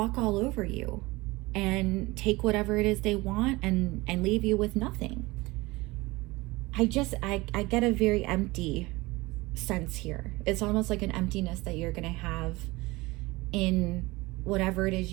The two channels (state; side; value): quieter; left; 21.8 dB